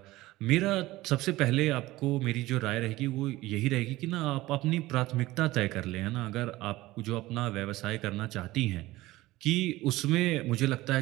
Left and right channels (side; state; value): left; quieter; 18.1 dB